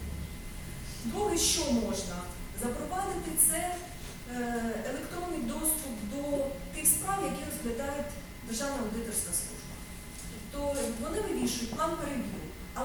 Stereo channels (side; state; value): both; identical; correlation 1.00